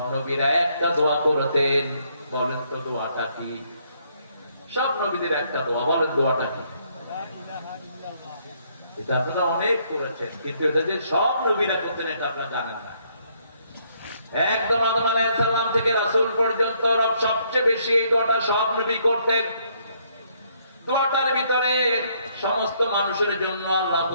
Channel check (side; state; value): both; inverted; correlation -0.69